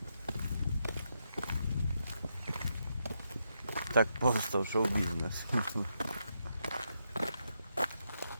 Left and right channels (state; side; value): inverted; both; correlation -0.82